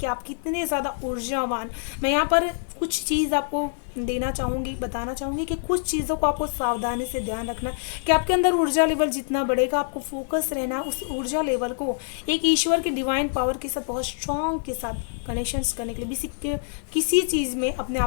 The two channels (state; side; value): silent; right; 61 dB below the other